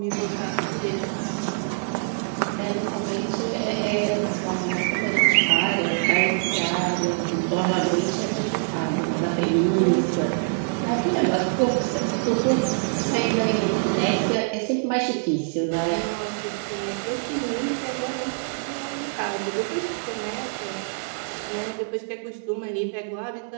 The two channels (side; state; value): left; silent; digital silence